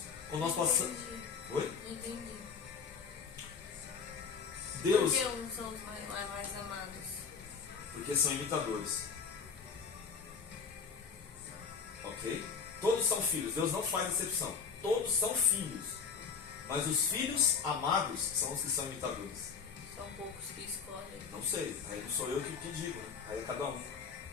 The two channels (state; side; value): quieter; right; 6.0 dB